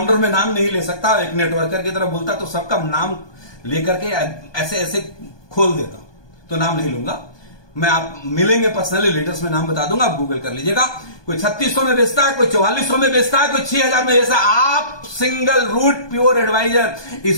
में नाम नहीं ले सकता, एक नेटवर्कर की तरह बोलता तो सबका नाम लेकर के ऐसे ऐसे खोल देता, तो नाम नहीं लूंगा मैं। आप मिलेंगे पर्सनली, लीडर्स में नाम बता दूंगा, आप गूगल कर लीजिएगा। कोई 3600 में बेचता है, कोई 4400 में बेचता है, कोई 6000 में बेचता है। आप सिंगल रूट प्योर एडवाइजर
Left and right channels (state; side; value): late; right; 1.2 ms